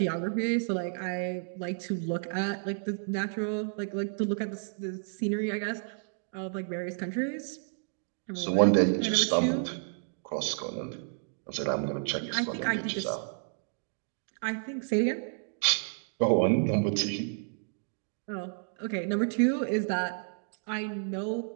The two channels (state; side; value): silent; left; digital silence